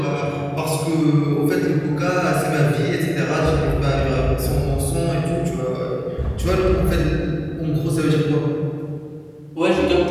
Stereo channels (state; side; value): identical; both; correlation 1.00